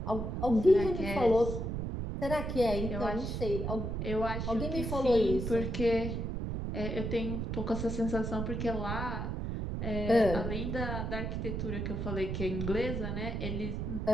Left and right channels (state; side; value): noise; right; rumble, 3 dB below the sound